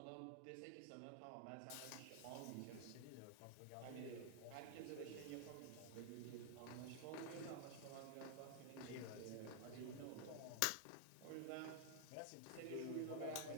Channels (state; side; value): different; both; correlation -0.01